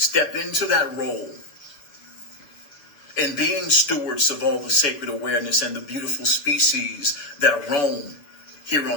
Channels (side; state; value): right; late; 6.7 ms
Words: into that role, And being stewards of all the sacred awareness and the beautiful species that roam here